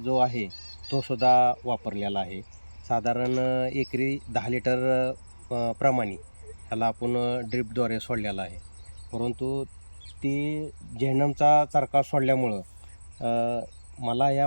आहे तो सुद्धा वापरलेला आहे. साधारण एकरी 10 लिटर प्रमाणे ह्याला आपण ड्रिपद्वारे सोडलेला आहे. परंतु ती जेनमचा चरका सोडल्यामुळं मला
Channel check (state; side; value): inverted; both; correlation -1.00